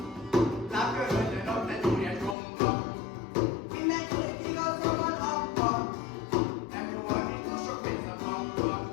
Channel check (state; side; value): drops out; right; at 2.4 s